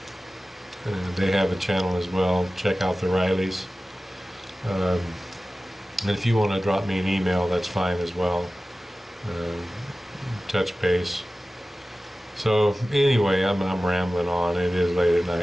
They have a channel as well. Check out the Rileys. And if you want to drop me an email, that's fine as well. Touch base. So anyway, I'm rambling on. It is late at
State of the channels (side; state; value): both; normal; correlation 0.96